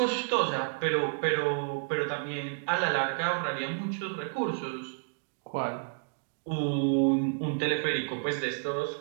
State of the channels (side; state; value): left; silent; digital silence